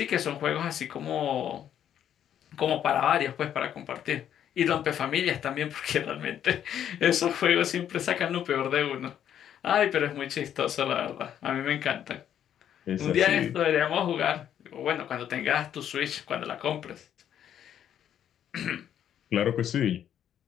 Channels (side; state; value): right; quieter; 9.9 dB